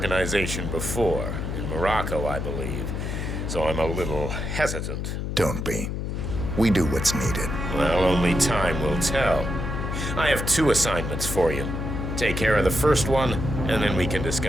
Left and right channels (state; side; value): noise; left; hum, 3 dB below the sound